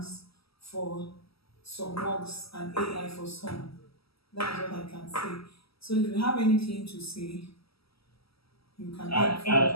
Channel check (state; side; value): late; right; 0.76 ms